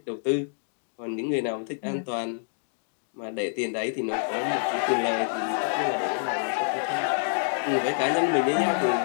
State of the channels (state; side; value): silent; right; digital silence